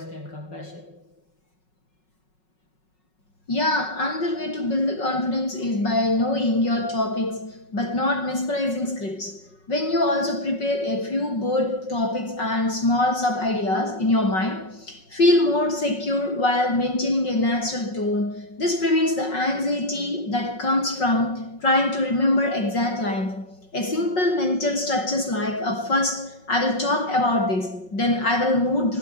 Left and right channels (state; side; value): late; right; 5.4 ms